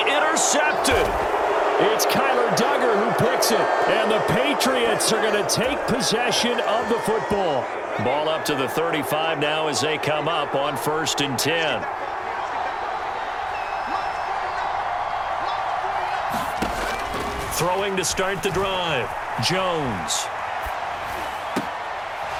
It's Kyler Duggar who picks it. And the Patriots are going to take possession of the football. Ball up to the 35 now as they come up on 1st and 10. Throwing to start the drive. Jones.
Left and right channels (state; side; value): identical; both; correlation 1.00